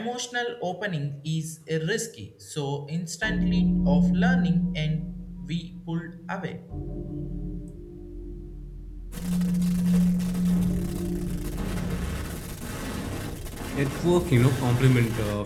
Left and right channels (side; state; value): both; identical; correlation 1.00